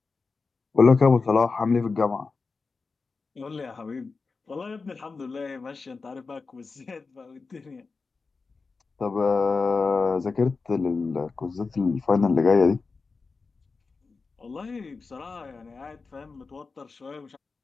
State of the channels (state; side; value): quieter; right; 4.3 dB